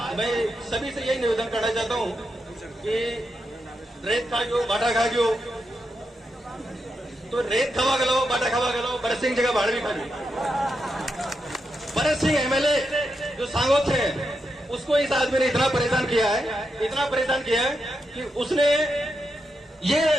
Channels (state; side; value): normal; both; correlation 0.85